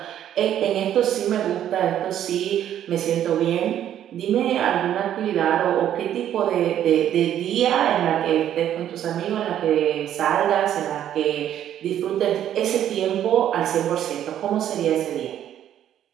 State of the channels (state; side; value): quieter; left; 10.8 dB